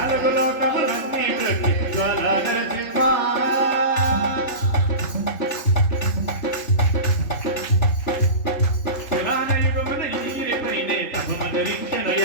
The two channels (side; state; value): right; late; 3.6 ms